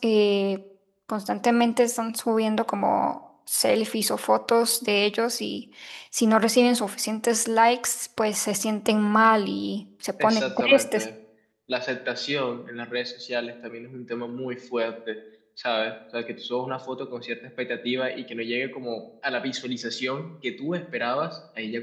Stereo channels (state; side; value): identical; both; correlation 1.00